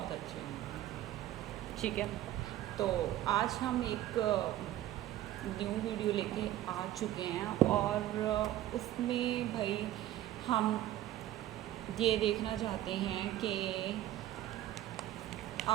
अच्छे होंगे। ठीक है, तो आज हम एक न्यू वीडियो लेके आ चुके हैं और उसमें भाई हम ये देखना चाहते हैं कि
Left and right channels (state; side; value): quieter; left; 13.6 dB